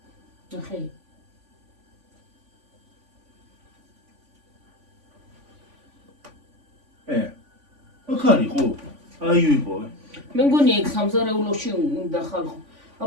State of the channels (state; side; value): late; left; 3.5 ms